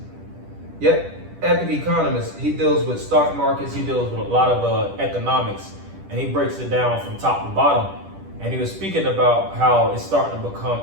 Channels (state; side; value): late; left; 10 ms